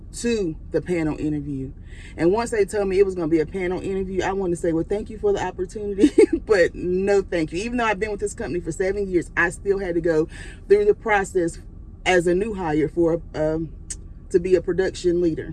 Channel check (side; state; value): both; identical; correlation 1.00